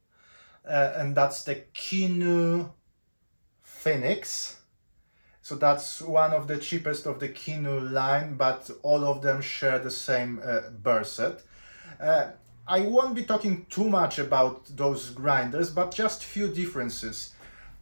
and that's the Kinu Phoenix. So that's one of the cheapest of the Kinu line, but all of them share the same burr set. Uh, I won't be talking too much about those grinders, but just few differences.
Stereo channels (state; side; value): inverted; both; correlation -1.00